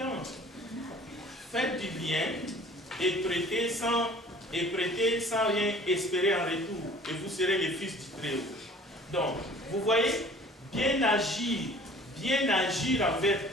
Faites du bien et prêtez sans rien espérer en retour, et vous serez les fils du Très-Haut. Donc, vous voyez, bien agir envers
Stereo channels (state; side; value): normal; both; correlation 0.49